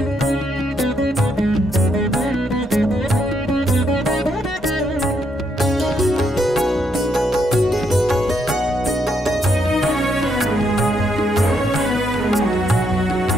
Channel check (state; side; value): normal; both; correlation 0.76